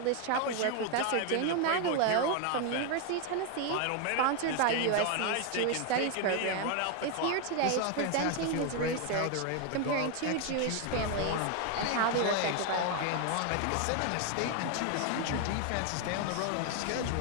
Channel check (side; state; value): both; different; correlation 0.01